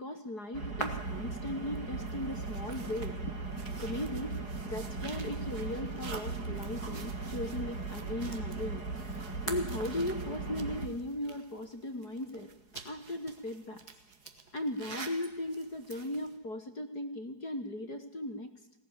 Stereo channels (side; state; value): right; late; 4.8 ms